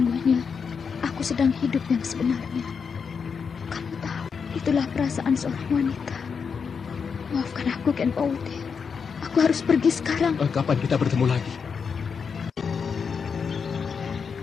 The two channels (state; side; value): quieter; right; 6.0 dB